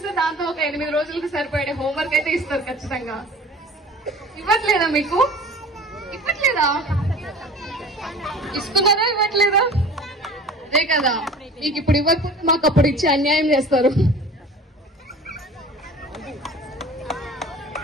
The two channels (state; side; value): normal; both; correlation 0.41